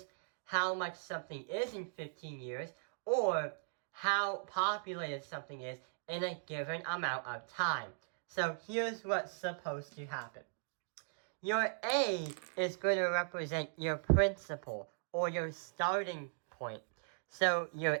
how much something is in 15 years, or how populated something is in a given amount of time. So here's what's supposed to happen. Your A is going to represent your principal, or your starting point. So your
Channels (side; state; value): left; silent; digital silence